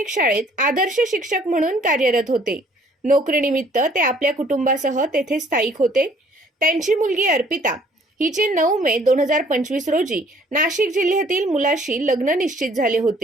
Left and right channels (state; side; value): normal; both; correlation 0.58